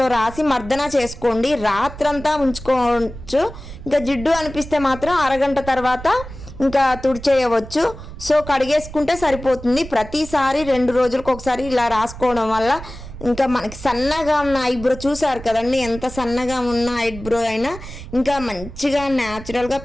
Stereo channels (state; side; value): noise; right; rumble, 13 dB below the sound